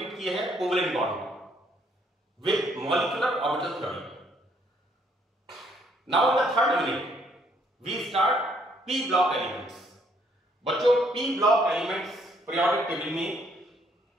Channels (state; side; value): normal; both; correlation 0.67